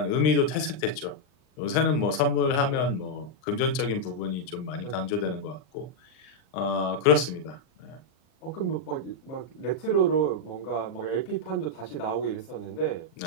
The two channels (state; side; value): late; right; 39 ms